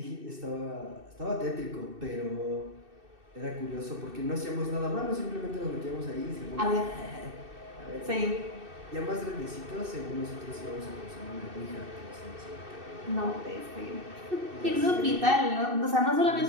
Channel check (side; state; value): left; late; 2.6 ms